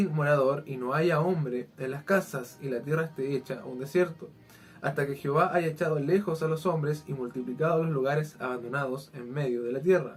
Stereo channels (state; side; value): identical; both; correlation 1.00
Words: morador, y no haya hombre en las casas, y la tierra esté hecha un desierto, hasta que Jehová haya echado lejos a los hombres y multiplicado los lugares abandonados en medio de la